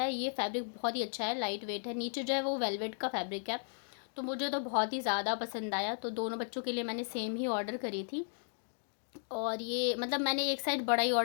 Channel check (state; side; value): silent; right; digital silence